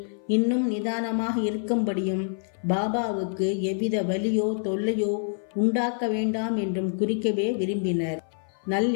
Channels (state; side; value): silent; right; 57 dB below the other